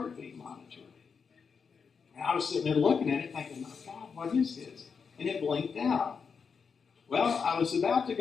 monitor. And I was sitting there looking at it thinking, my God, what is this? And it blinked out. Well, I was about to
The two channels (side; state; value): right; quieter; 5.8 dB